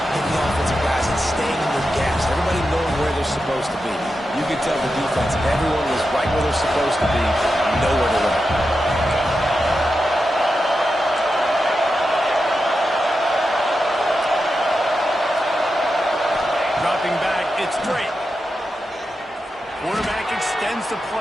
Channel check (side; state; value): both; normal; correlation 0.89